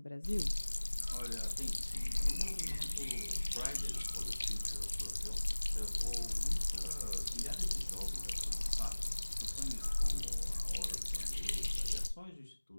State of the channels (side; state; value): both; inverted; correlation -1.00